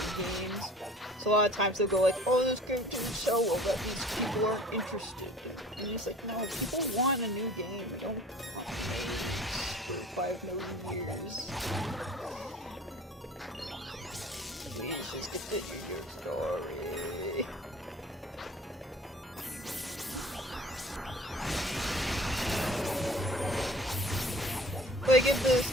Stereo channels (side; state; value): both; normal; correlation 0.47